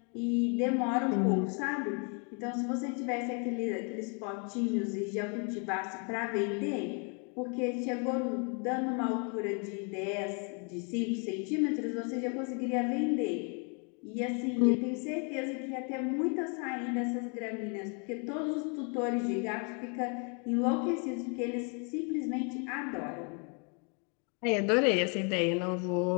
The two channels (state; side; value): quieter; right; 37.3 dB